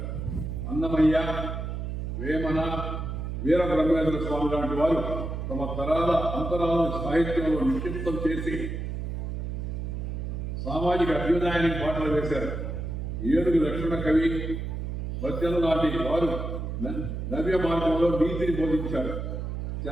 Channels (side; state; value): right; noise; hum, 4 dB below the sound